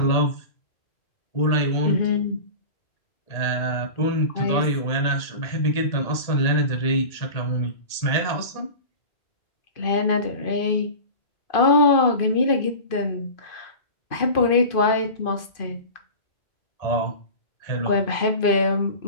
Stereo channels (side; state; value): right; late; 2.5 ms